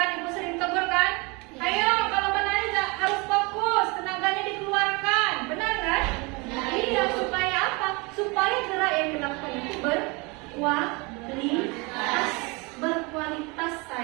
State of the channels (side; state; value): left; quieter; 27.9 dB